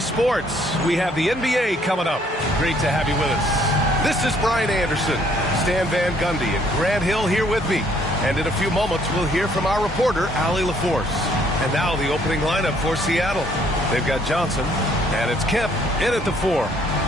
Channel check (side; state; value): both; normal; correlation 0.64